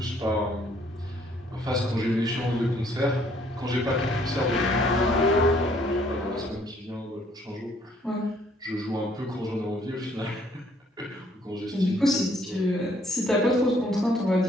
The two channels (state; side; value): normal; both; correlation 0.64